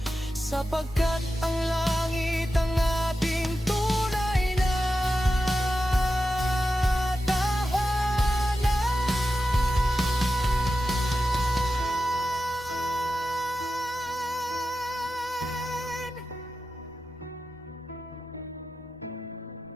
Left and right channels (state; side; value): normal; both; correlation 0.92